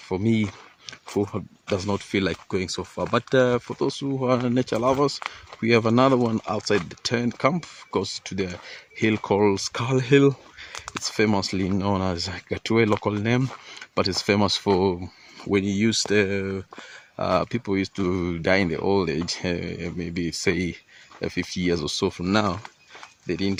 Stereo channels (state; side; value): identical; both; correlation 1.00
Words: me who does not feel like going so far. But for those who are nature lovers, we have another one outside the tent camp, goes to the hill called Skull Hill. It's famously known as Gatue local name, but it's famous for when you use the people used to die in the old age, maybe say 50 years or so from now. They